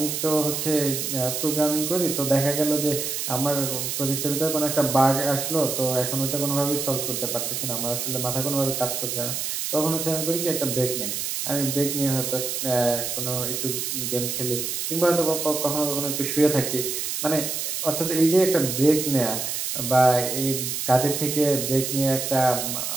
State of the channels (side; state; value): right; noise; hiss, 3 dB below the sound